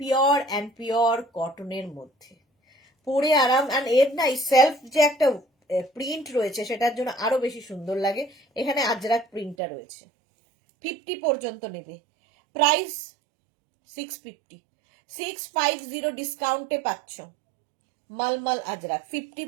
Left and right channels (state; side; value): drops out; left; at 9.6 s